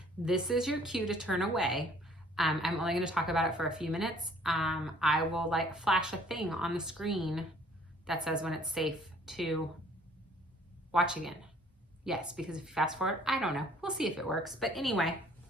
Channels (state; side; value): normal; both; correlation 0.58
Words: this is your cue to turn away. I'm only going to talk about it for a few minutes. I will like flash a thing on the screen that says when it's safe to watch again. Yes, because if you fast forward, I don't know. We'll see if it works. But anyway,